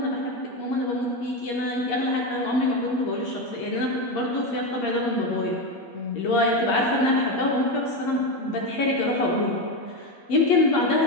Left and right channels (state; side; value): late; right; 8.4 ms